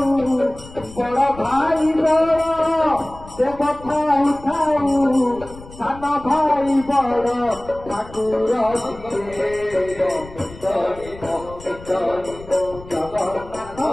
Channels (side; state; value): left; noise; rumble, 17 dB below the sound